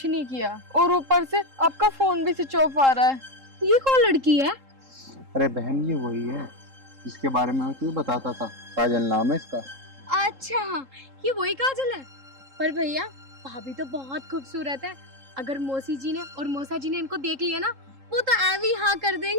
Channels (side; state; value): left; late; 3.7 ms